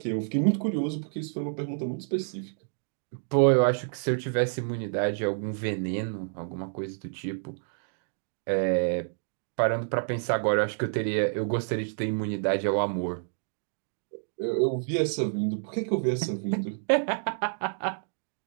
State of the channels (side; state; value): left; silent; digital silence